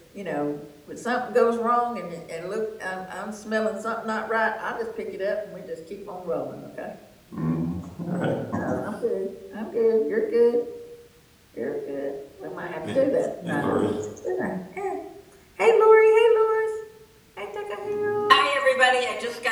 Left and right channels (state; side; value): identical; both; correlation 1.00